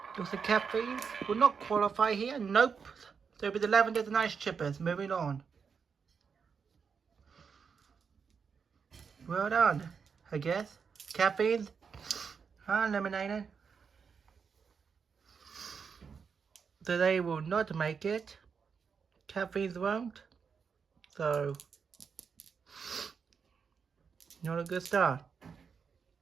Looks like Caffeines will not qualify here. Nope. So it'll be the Lavenders and Ice Chippers. Moving on. Well done, I guess. Caffeines are eliminated. So they will not make it. Caffeines won't. So, not a good start.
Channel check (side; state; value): left; quieter; 6.0 dB